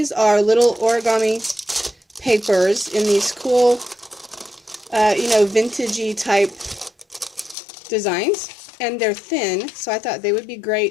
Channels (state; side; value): drops out; right; at 7.6 s